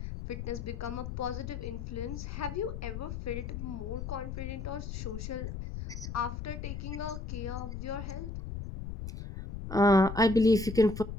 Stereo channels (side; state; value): left; noise; rumble, 6 dB below the sound